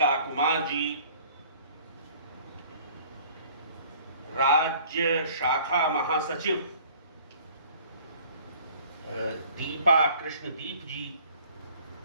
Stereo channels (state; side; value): inverted; both; correlation -0.52